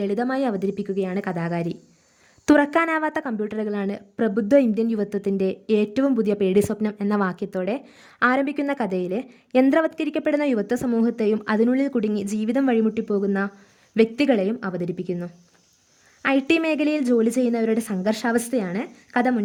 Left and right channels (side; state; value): both; identical; correlation 1.00